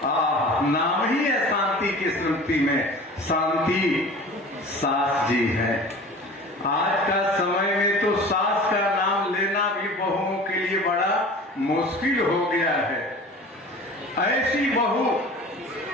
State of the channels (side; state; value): both; normal; correlation 0.40